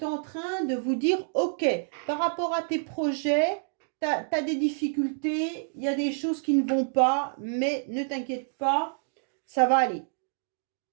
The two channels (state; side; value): silent; left; digital silence